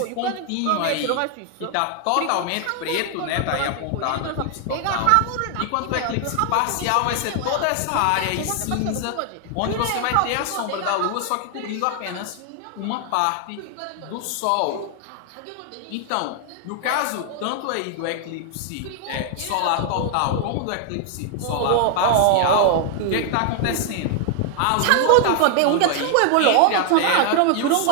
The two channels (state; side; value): different; both; correlation 0.00